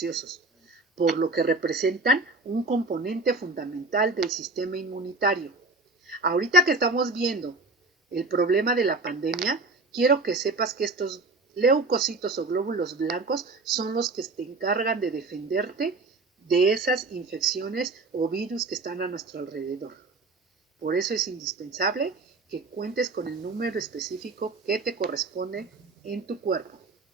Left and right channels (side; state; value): left; quieter; 3.3 dB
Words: por lo que representan un componente fundamental del sistema inmunitario. Ahorita que estamos viendo el problema de la pandemia, quiero que sepas que estos leucocitos o glóbulos blancos son los que te encargan de defenderte de esas infecciones o virus que están a nuestro alrededor. Por eso es indispensable que cuentes con el número específico que te corresponde en tu cuerpo.